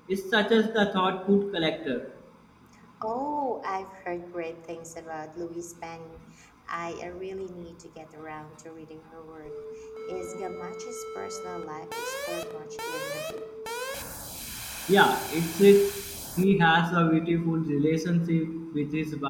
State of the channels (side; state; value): both; identical; correlation 1.00